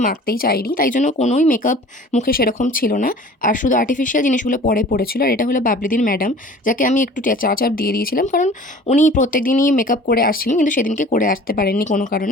মাখতেই চাইনি, তাই জন্য কোনোই মেকআপ মুখে সেরকম ছিল না। আর শুধু আর্টিফিশিয়াল জিনিসগুলো পরে পড়েছিল। আর এটা হলো বাবলিদির ম্যাডাম, যাকে আমি একটু চা চাপ দিয়ে দিয়েছিলাম, কারণ উনি প্রত্যেক দিনই মেকআপ করে আসছিলেন, কিন্তু সেদিনকে করে আসতে পারেননি কোনো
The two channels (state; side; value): normal; both; correlation 0.45